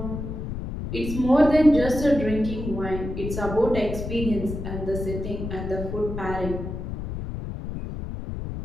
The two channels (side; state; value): left; noise; rumble, 6 dB below the sound